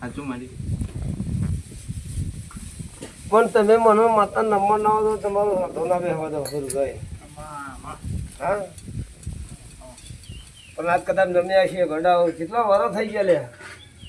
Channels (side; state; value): both; identical; correlation 1.00